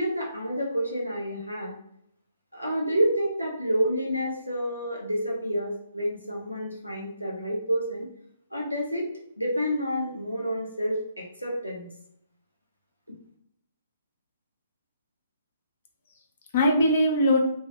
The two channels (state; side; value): inverted; both; correlation -0.74